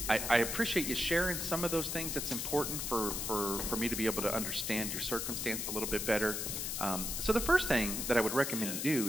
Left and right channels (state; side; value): noise; left; hiss, 3 dB below the sound